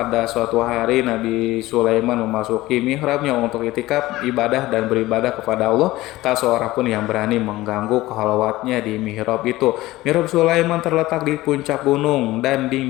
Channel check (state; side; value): quieter; right; 17.8 dB